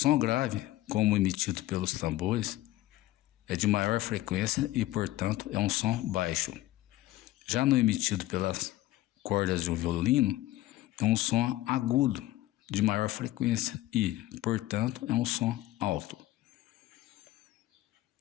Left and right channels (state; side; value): quieter; right; 16.1 dB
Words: grave, como emitido pelos tambores, é de maior frequência e, portanto, é um som baixo. Já no emitido pelas cordas de um violino, é um som agudo, de maior frequência e, portanto, é um som alto.